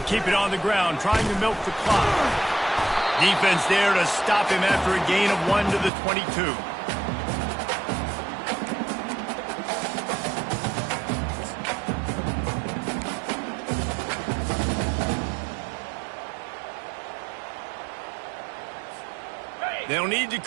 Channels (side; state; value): left; drops out; at 5.9 s